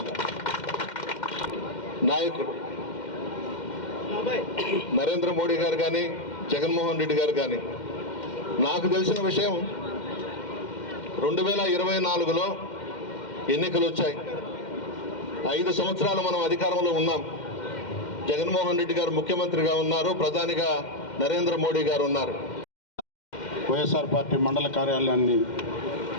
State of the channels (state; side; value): late; right; 2.1 ms